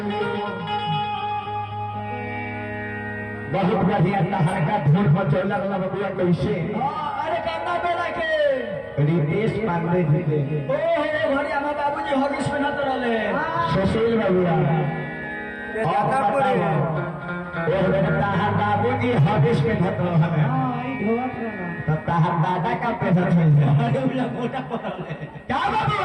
बहुत बढ़िया तहर का धूल मचौला वाला बबुआ कैसे अरे करना बेला के रितेश पांडे जी के ओहो भरी हमार बाबूजी हॉगिस में नत रहले सुशील बबुआ तहर बाबूजी हॉगिस में धत रहले तो तहर दादा का पैसा मिल जाए मोटा पड़ले क्या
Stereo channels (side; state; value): both; identical; correlation 1.00